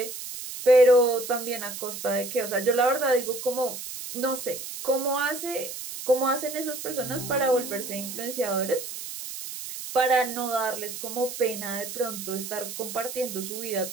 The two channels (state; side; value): noise; right; hiss, 9 dB below the sound